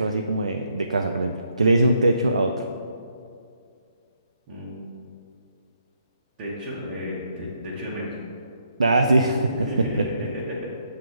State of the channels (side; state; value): both; inverted; correlation -0.74